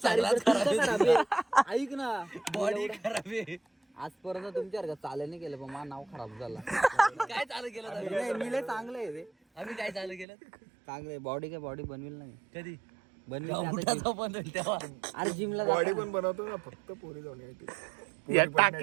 ऐक ना. बॉडी खराब आहे. आजपर्यंत तुमच्या चालू नाही केलं पण माझं नाव खराब झाला. काय चालू केलं. मी लय चांगलं आहे रे. आम्ही काय चालू केलं चांगलं. बॉडी बनवेल नाही कधी बनवेल तेव्हा. अरे जिमला बॉडी पण बनवतो ना फक्त पोरी जाऊन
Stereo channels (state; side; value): drops out; left; at 10.2 s